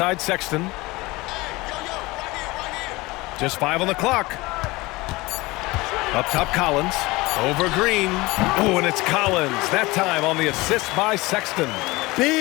Sexton. Just 5 on the clock. Up top Collins. Over Green. Oh, and it's Collins. That time on the assist by Sexton.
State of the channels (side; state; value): right; quieter; 21.6 dB